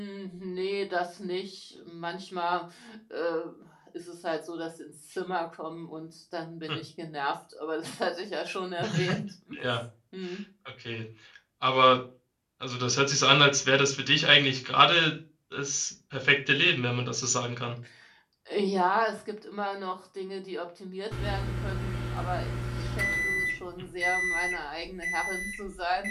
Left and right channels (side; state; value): both; identical; correlation 1.00